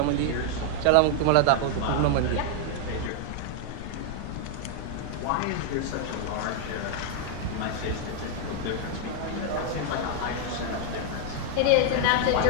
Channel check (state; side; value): different; both; correlation 0.00